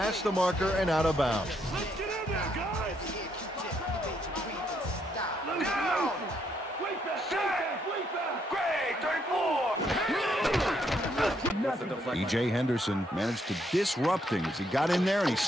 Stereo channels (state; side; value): normal; both; correlation 0.74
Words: the marker and out of bounds. Let's get in there, guys. Down. Way back. Greg, 34. With the deflection. E.J. Henderson managed to disrupt things. He got in there and he